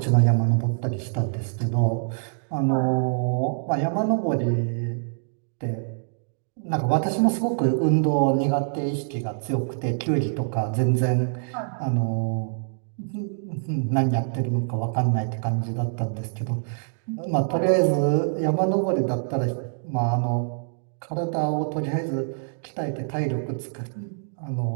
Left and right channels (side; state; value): left; silent; digital silence